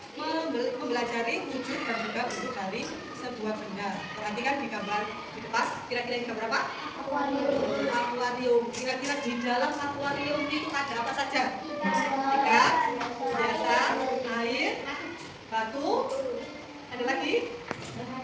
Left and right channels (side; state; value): both; identical; correlation 1.00